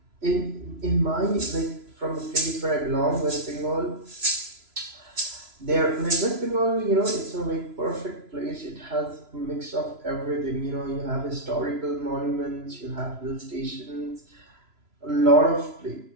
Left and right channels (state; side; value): late; left; 3.0 ms